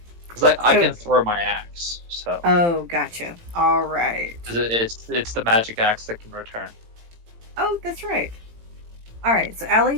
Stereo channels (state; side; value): late; left; 18 ms